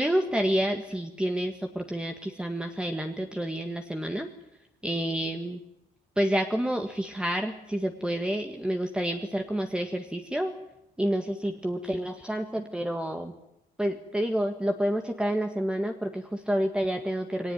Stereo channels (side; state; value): both; normal; correlation 0.91